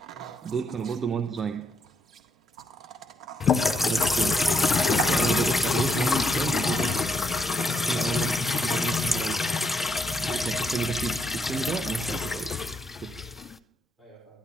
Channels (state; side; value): normal; both; correlation 0.77